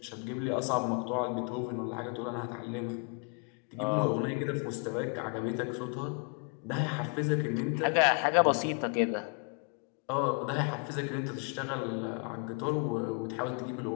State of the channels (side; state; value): right; quieter; 37.0 dB